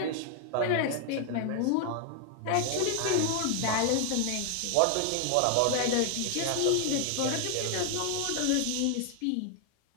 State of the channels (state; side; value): different; both; correlation 0.00